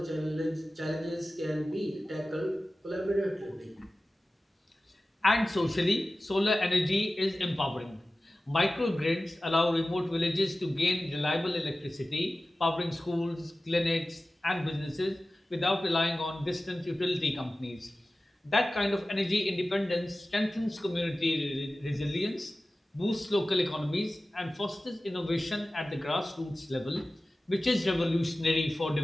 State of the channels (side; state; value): both; normal; correlation 0.96